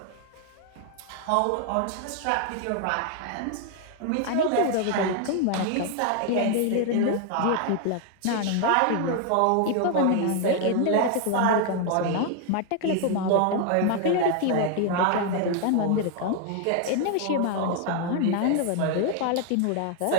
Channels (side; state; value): both; different; correlation 0.00